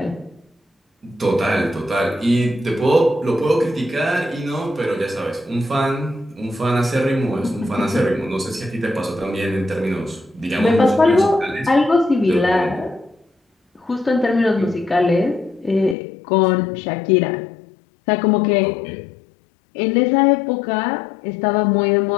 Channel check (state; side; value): drops out; right; at 16.0 s